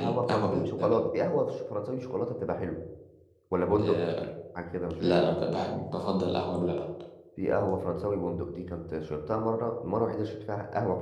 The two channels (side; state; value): both; identical; correlation 1.00